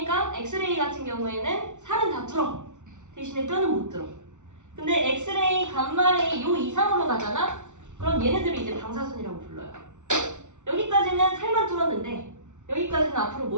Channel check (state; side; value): late; left; 0.85 ms